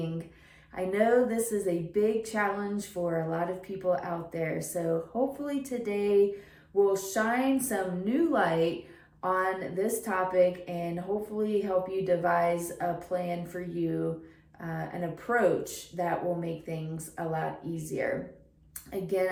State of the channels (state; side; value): identical; both; correlation 1.00